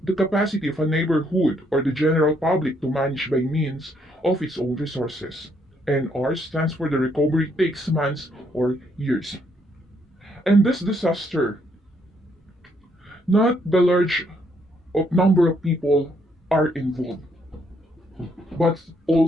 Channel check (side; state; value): both; normal; correlation 0.72